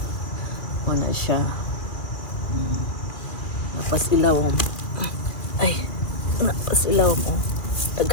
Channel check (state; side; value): late; right; 2.4 ms